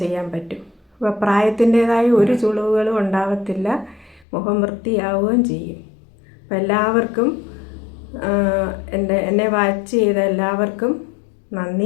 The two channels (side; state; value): right; drops out; at 4.2 s